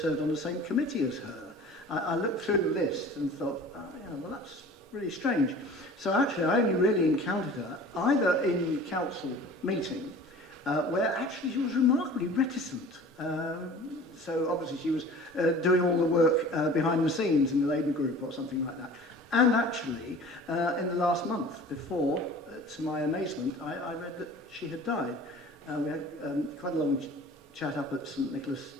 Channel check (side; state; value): both; normal; correlation 0.43